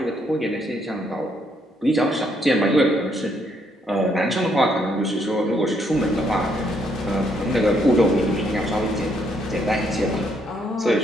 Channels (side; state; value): both; normal; correlation 0.72